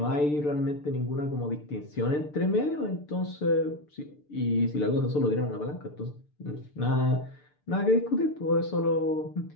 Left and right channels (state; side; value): late; right; 6.8 ms